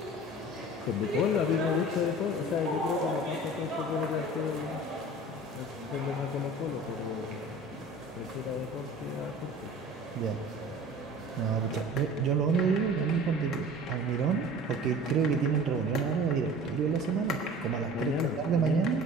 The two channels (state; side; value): normal; both; correlation 0.42